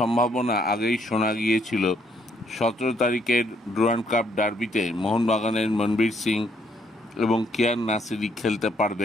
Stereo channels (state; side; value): normal; both; correlation 0.69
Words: আগেই শোনা গিয়েছিল 17 তারিখের ডুরান্ড কাপ ডার্বিতে মোহনবাগানের মনবীর সিং এবং কিয়ান নাসিরি খেলতে